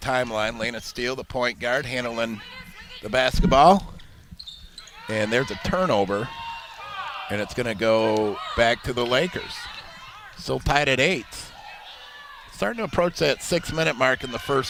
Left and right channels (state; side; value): identical; both; correlation 1.00